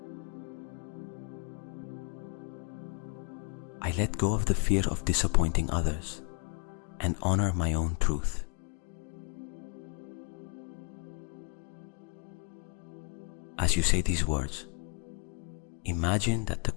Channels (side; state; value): right; quieter; 39.1 dB